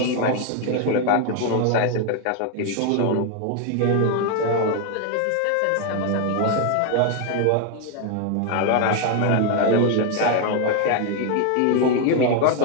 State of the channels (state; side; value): different; both; correlation 0.01